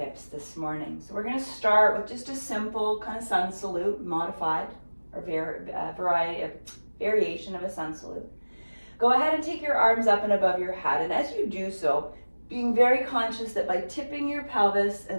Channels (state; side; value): inverted; both; correlation -1.00